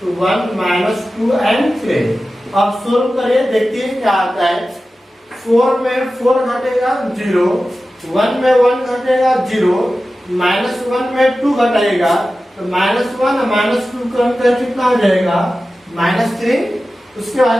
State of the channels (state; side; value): normal; both; correlation 0.94